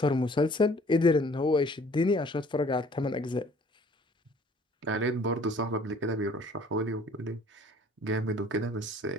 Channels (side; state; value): both; normal; correlation 0.54